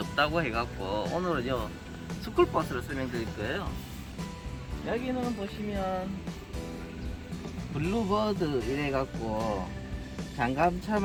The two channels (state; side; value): identical; both; correlation 1.00